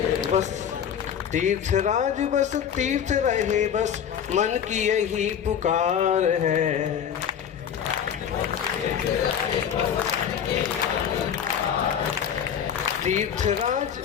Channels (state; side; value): quieter; right; 8.4 dB